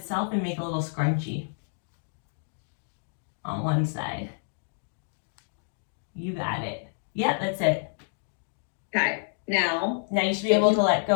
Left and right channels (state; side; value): silent; right; digital silence